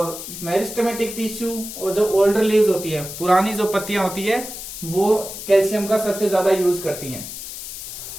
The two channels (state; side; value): noise; left; hiss, 10 dB below the sound